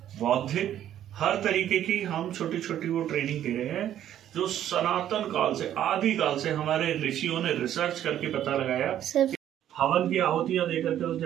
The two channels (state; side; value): quieter; left; 11.2 dB